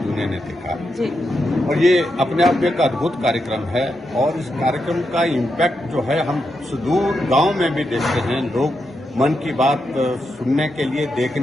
ने देखा जी। और ये अपने आप में एक अद्भुत कार्यक्रम है और इस कार्यक्रम का इम्पैक्ट जो है हम सुदूर गांव में भी देखते हैं। लोग मन की बात सुनने के लिए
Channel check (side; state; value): both; normal; correlation 0.85